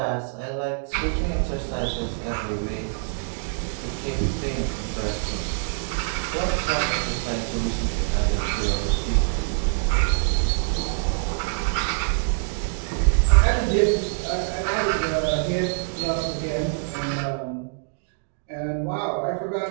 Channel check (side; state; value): left; silent; digital silence